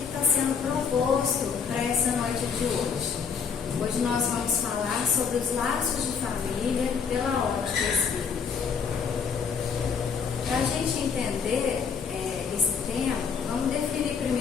está sendo proposto para essa noite de hoje. Hoje nós vamos falar sobre os laços de família pela ótica espírita. Para a gente entender esse tema, vamos definir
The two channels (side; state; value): right; quieter; 6.3 dB